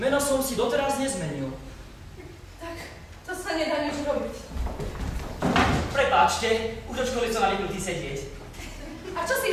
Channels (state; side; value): identical; both; correlation 1.00